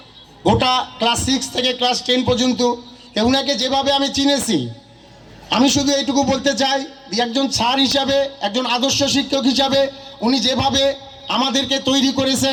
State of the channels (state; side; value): identical; both; correlation 1.00